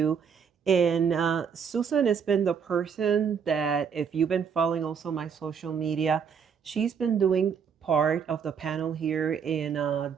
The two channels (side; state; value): left; quieter; 6.9 dB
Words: And Susan has been the person that, if you've been following also my social media, she's been doing part of the panel here in